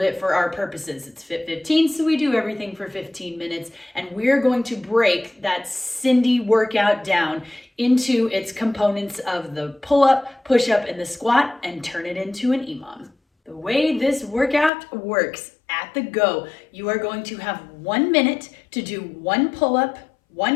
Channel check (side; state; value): right; drops out; at 14.7 s